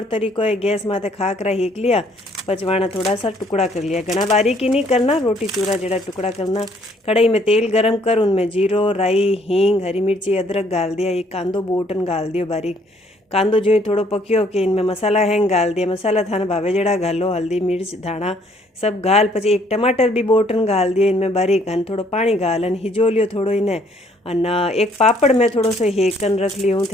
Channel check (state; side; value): normal; both; correlation 0.64